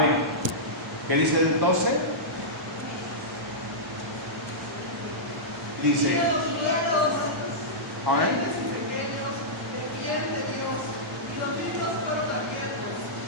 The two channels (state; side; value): normal; both; correlation -0.13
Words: ¿Qué dice el 12? Dice, amén.